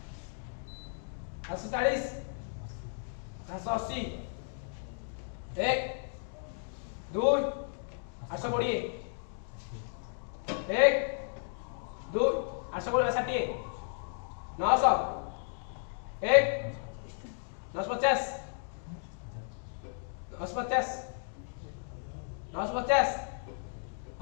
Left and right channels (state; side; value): silent; right; digital silence